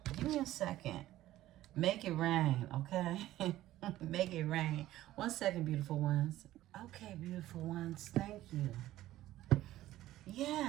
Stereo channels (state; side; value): quieter; left; 14.7 dB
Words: Give me a second. Make it rain, okay? Make it rain. 1 second, beautiful ones. Okay, beautiful ones, thank you.